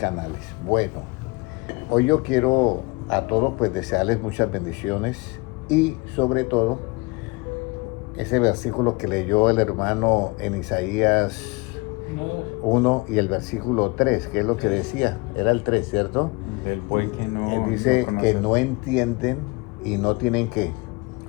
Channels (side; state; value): right; quieter; 26.2 dB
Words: Bueno, hoy yo quiero a todos pues desearles muchas bendiciones y sobre todo ese versículo que leyó el hermano en Isaías 1 y el versículo 3, que es lo que decía, era el 3, ¿cierto? Del pueblo que no, Él dice que no entienden y no tienen ¿qué?